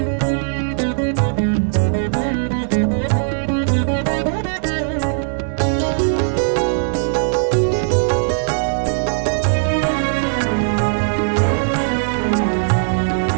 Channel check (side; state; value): left; silent; digital silence